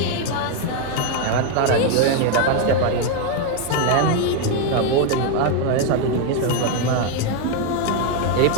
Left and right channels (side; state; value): both; different; correlation 0.01